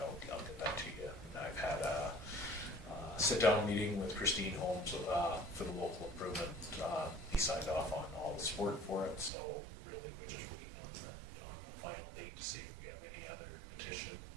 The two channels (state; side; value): drops out; left; at 9.3 s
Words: get that to you. And I've had a sit-down meeting with Christine Holmes for the local improvement. He signed off on all the support for it, so really we're just waiting on the final date to see if we have any other petition.